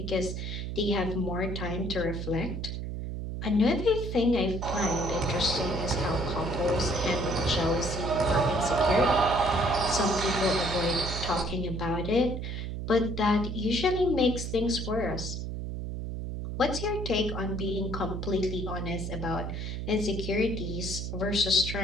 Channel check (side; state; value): right; noise; hum, 5 dB below the sound